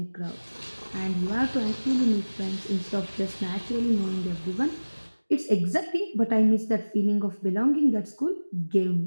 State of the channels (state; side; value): inverted; both; correlation -1.00